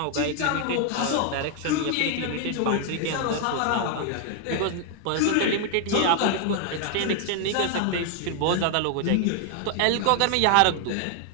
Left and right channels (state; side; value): different; both; correlation 0.00